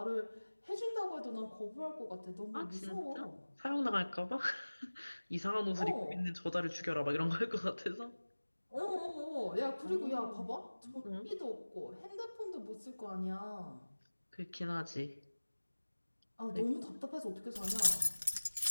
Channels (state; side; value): inverted; both; correlation -1.00